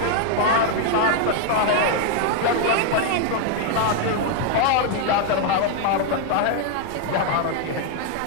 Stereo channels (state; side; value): different; both; correlation 0.00